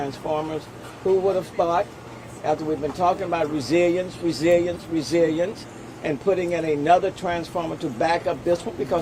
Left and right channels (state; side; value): identical; both; correlation 1.00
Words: who would have thought, after we've been talking about resilience, and putting in another transformer to back up this one,